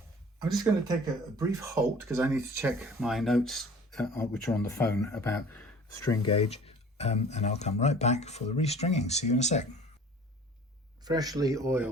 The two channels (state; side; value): normal; both; correlation 0.47